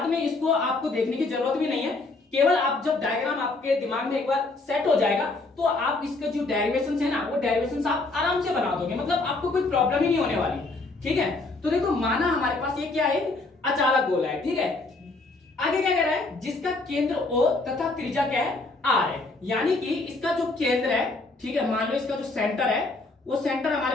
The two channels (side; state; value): right; quieter; 3.3 dB